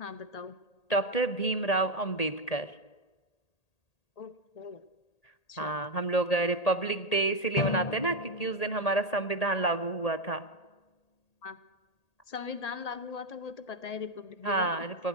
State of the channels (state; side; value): late; right; 1.8 ms